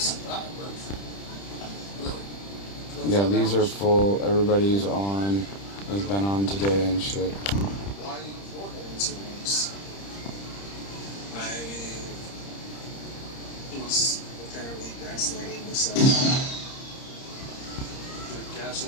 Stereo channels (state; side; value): late; right; 30 ms